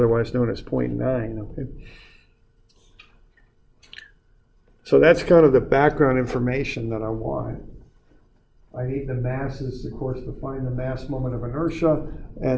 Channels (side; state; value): both; identical; correlation 1.00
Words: known as 0.9. Okay. So that's kind of the background information that I want. I need the masses, of course, to find the mass moment of inertia,